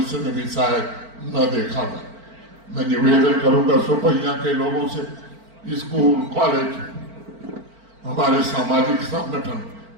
में भी शायद न देखा जाए। मैं निवेदन करूंगा शोपियां के लोगों से, स्कूल, कॉलेज, हमारे सामाजिक संगठन,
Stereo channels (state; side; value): late; left; 4.4 ms